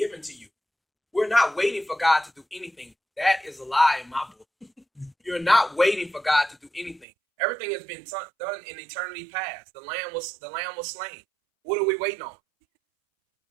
to you. We're not waiting for God to do anything. That is a lie in my book. You're not waiting for God to do anything. Everything has been done in eternity past. The lamb was slain. What are we waiting on?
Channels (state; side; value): drops out; left; at 7.1 s